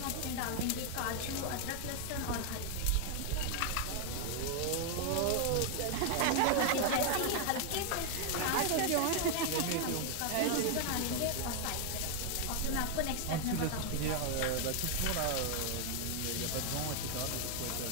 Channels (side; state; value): both; different; correlation 0.00